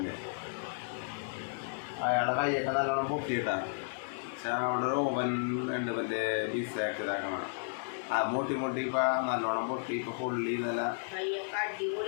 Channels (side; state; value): right; silent; digital silence